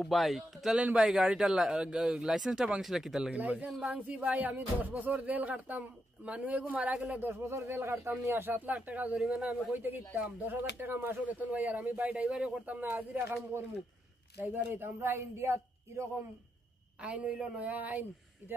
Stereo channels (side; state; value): both; normal; correlation 0.83